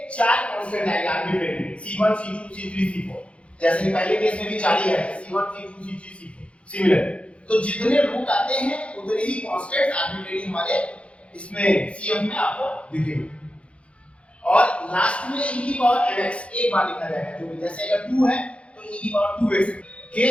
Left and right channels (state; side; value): late; right; 0.061 ms